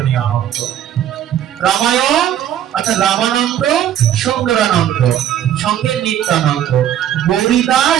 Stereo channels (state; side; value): quieter; left; 10.8 dB